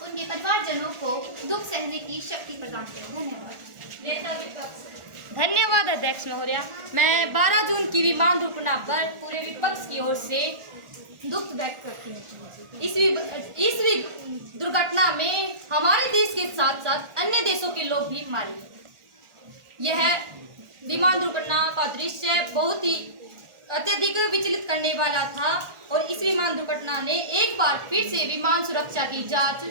उनके परिवारजनों को दुख सहने की शक्ति प्रदान करे। धन्यवाद। धन्यवाद अध्यक्ष महोदय। मैं 12 जून की विमान दुर्घटना पर पूरे विपक्ष की ओर से दुख व्यक्त करती हूँ। इस दुर्घटना में हमारे देश के साथ साथ अन्य देशों के लोग भी मारे गए। यह विमान दुर्घटना का दृश्य बहुत ही अत्यधिक विचलित करने वाला था और इस विमान दुर्घटना ने एक बार फिर से विमान सुरक्षा की जांच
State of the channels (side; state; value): left; late; 1.4 ms